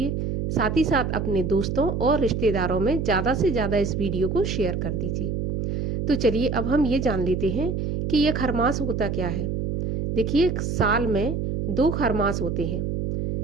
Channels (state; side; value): noise; right; hum, 2 dB below the sound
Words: साथ ही साथ अपने दोस्तों और रिश्तेदारों में ज़्यादा से ज़्यादा इस वीडियो को शेयर कर दीजिए। तो चलिए अब हम ये जान लेते हैं कि यह खरमास होता क्या है। देखिए, साल में 2 खरमास होते हैं